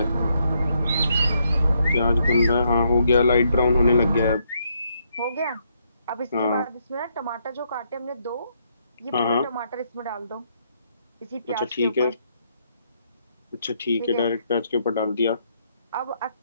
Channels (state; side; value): inverted; both; correlation -0.75